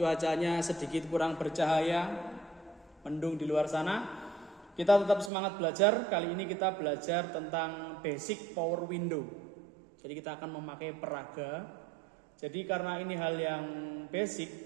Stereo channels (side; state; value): left; drops out; at 5.3 s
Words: sedikit kurang bercahaya, mendung di luar sana. Kita tetap semangat belajar. Kali ini kita belajar tentang basic power window. Jadi kita akan memakai peraga. Jadi karena ini hal yang